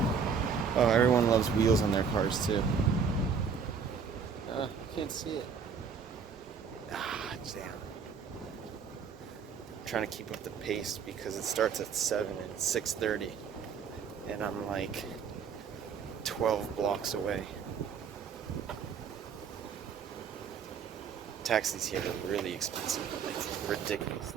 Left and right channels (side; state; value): left; quieter; 6.2 dB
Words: Oh, everyone loves wheels on their cars too. I can't see it. Damn. I'm trying to keep up the pace because it starts at 7 and it's 6:30. And I'm like 12 blocks away. Taxis here are really expensive. Like,